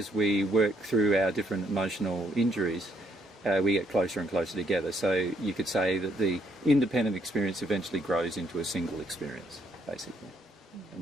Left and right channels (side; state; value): both; normal; correlation 0.71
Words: we work through our different emotional injuries, we get closer and closer together. So you could say that the independent experience eventually grows into a single experience, basically.